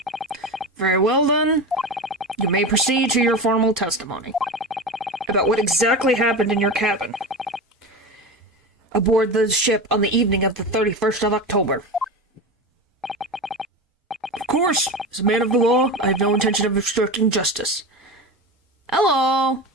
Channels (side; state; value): both; normal; correlation 0.24